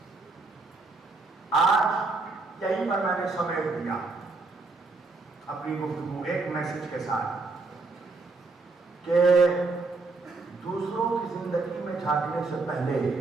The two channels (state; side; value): quieter; left; 3.7 dB